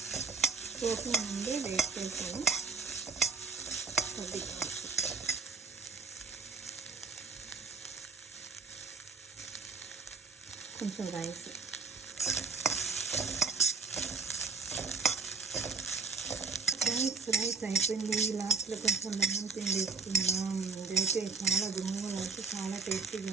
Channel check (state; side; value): quieter; left; 4.7 dB